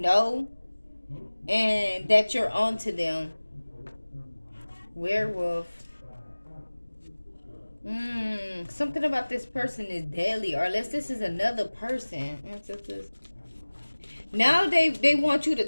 know, and that you're onto them. Werewolf. Something about this person is deadly, or unless this is another person. Now they want you to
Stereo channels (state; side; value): inverted; both; correlation -1.00